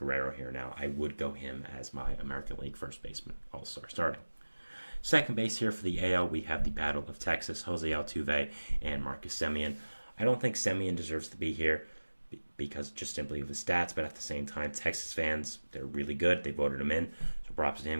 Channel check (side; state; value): both; inverted; correlation -1.00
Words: here now, I would go him as my American League first baseman, All-Star starting. Second base here for the AL, we have the Battle of Texas, Jose Altuve and Marcus Semien. I don't think Semien deserves to be here because just simply of his stats, but at the same time, Texas fans, they're really good. They voted him in, so props to